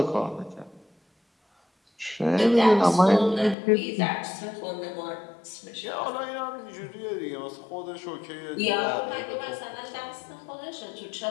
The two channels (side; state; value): right; drops out; at 3.6 s